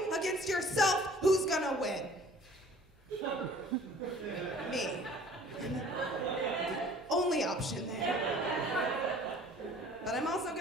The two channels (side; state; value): both; normal; correlation 0.50